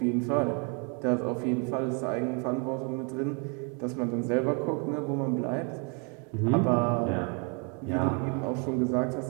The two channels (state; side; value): quieter; left; 35.8 dB